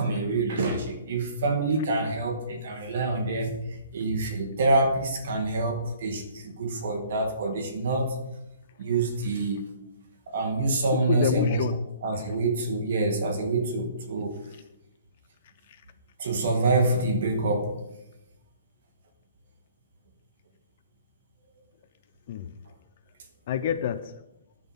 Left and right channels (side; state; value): both; inverted; correlation -0.55